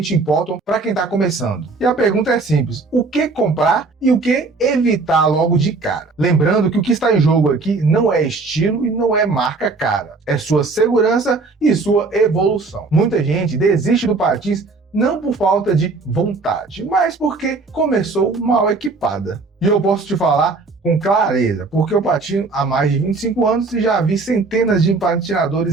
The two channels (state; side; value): quieter; left; 3.9 dB